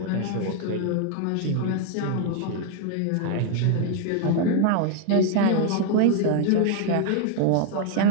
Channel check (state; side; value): different; both; correlation 0.00